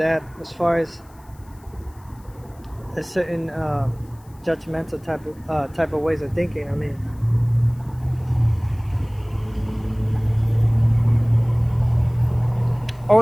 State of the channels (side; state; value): left; noise; hiss, 30 dB below the sound